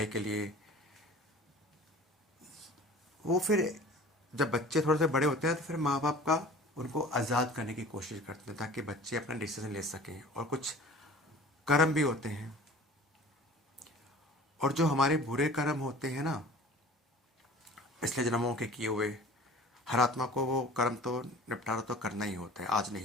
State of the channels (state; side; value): normal; both; correlation 0.43